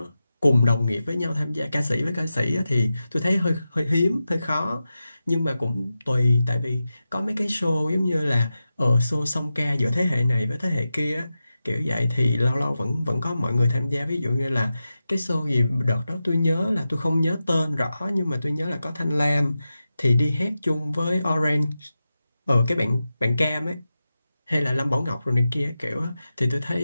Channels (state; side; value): inverted; both; correlation -0.92